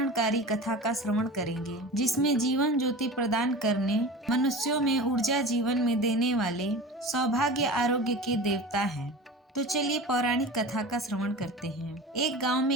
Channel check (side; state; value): both; normal; correlation 0.34